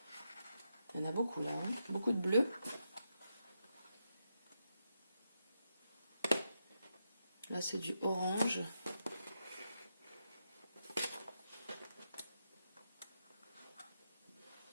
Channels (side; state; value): both; inverted; correlation -0.84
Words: Il y en a beaucoup là, hein. Beaucoup de bleu. Là, c'est du orange.